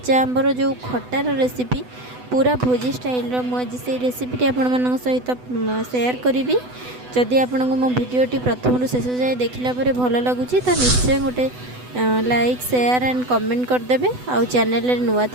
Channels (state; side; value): late; left; 8.0 ms